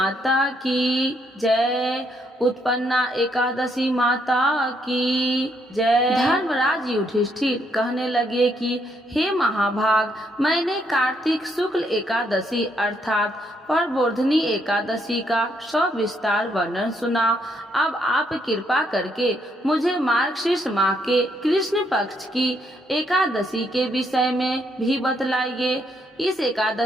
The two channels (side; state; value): both; normal; correlation 0.74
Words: की जय, उत्पन्ना एकादशी माता की जय। धर्मराज युधिष्ठिर कहने लगे कि हे महाभाग, मैंने कार्तिक शुक्ल एकादशी अर्थात प्रबोधिनी एकादशी का सविस्तार वर्णन सुना। अब आप कृपा करके मुझे मार्गशीर्ष माह के कृष्ण पक्ष की एकादशी के विषय में भी बतलाइए। इस